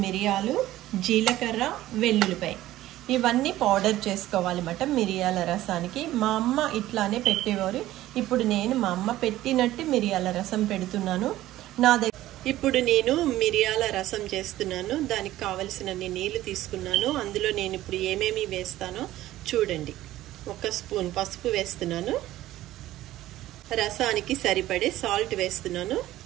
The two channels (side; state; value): left; quieter; 15.0 dB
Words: మిరియాలు, జీలకర్ర, వెల్లుల్లిపాయ, ఇవన్నీ పౌడర్ చేసుకోవాలన్నమాట మిరియాల రసానికి. మా అమ్మ ఇట్లానే పెట్టేవారు. ఇప్పుడు నేను మా అమ్మ పెట్టినట్టు మిరియాల రసం పెడుతున్నాను. ఇప్పుడు నేను మిరియాల రసం చేస్తున్నాను. దానికి కావలసినన్ని నీళ్లు తీసుకున్నాను. అందులో నేను ఇప్పుడు ఏమేమి వేస్తానో చూడండి. 1 స్పూన్ పసుపు వేస్తున్నాను, రసానికి సరిపడే సాల్ట్ వేస్తున్నాను.